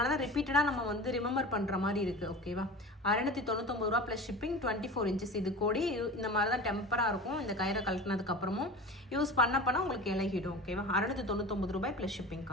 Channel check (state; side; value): normal; both; correlation 0.34